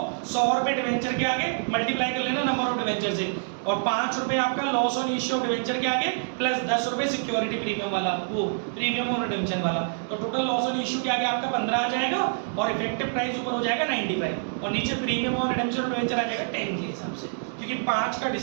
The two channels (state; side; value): silent; left; digital silence